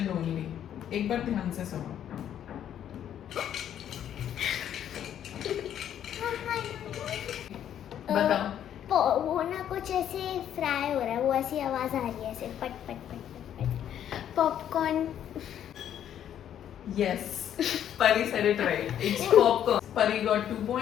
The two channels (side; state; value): right; quieter; 10.1 dB